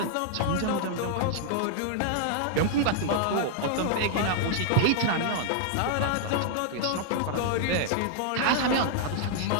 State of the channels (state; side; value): different; both; correlation -0.01